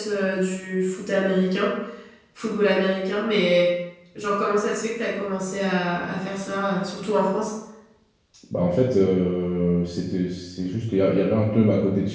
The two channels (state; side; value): identical; both; correlation 1.00